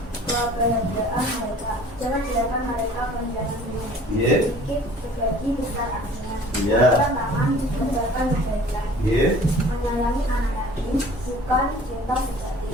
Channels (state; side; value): normal; both; correlation 0.49